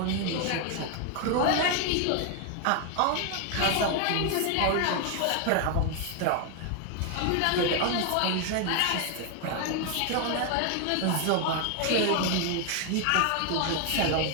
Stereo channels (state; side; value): different; both; correlation 0.01